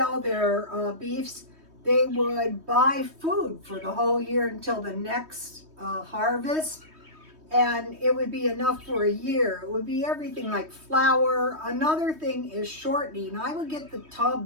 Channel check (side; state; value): left; late; 3.2 ms